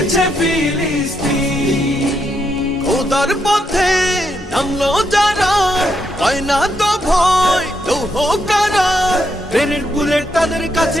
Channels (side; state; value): both; normal; correlation 0.79